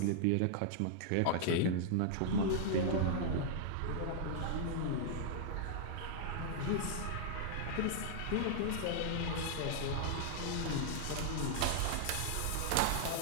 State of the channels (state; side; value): different; both; correlation -0.01